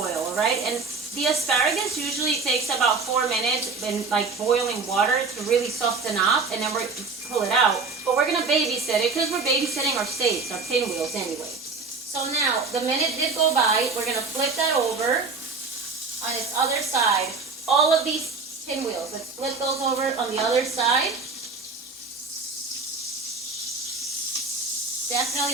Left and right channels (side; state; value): left; quieter; 4.3 dB